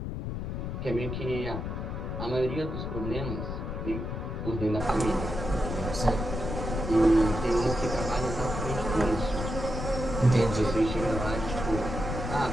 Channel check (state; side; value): noise; left; rumble, 4 dB below the sound